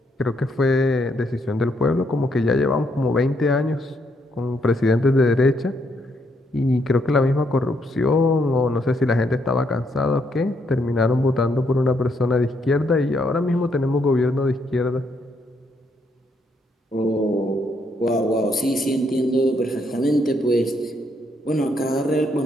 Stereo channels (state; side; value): normal; both; correlation 0.74